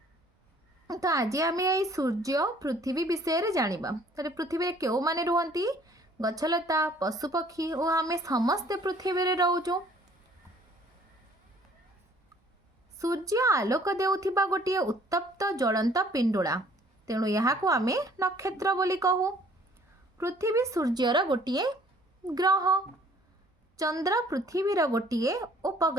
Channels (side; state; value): both; normal; correlation 0.57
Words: तो आज आम ये सूर्य पृथ्वी विषय जानिबा। तो पृथ्वी रे केउ माने रुहंती, गछलता, पशुपक्षी और आम समस्ते पृथ्वी रे रहूचु। सूर्य आलोक देउथिबा गोटे उत्तप्त ज्वलंत पिंडुला, तेणु यहाँ को आम नक्षत्र बोली कहू। पृथ्वी सूर्यर गोटे ग्रह, चंद्र पृथ्वीर गोटे